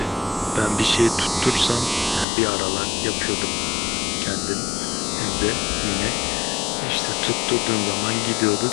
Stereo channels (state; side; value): drops out; right; at 2.2 s